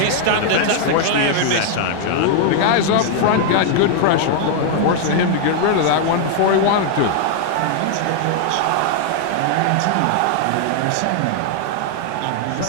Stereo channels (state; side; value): different; both; correlation 0.00